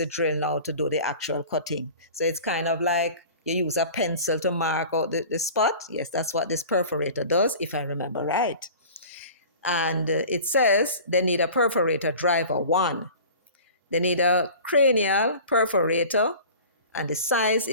drill now to do the actual cutting. So it's kind of like you use a pencil to mark out the spot. Yes, that's what this perforator does, if I remember right. And it says they need a perforator driver 1. They need a cranial perforator, and the size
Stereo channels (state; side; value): inverted; both; correlation -0.41